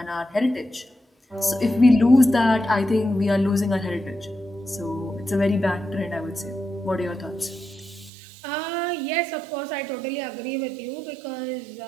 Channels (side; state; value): left; drops out; at 8.1 s